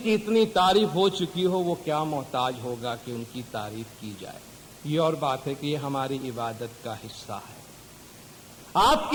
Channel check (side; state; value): both; identical; correlation 1.00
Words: کی اتنی تعریف ہو چکی ہو وہ کیا محتاج ہوگا کہ ان کی تعریف کی جائے؟ یہ اور بات ہے کہ یہ ہماری عبادت کا حصہ ہے۔ آپ